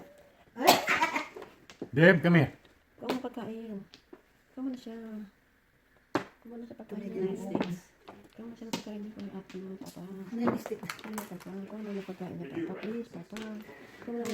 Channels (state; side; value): identical; both; correlation 1.00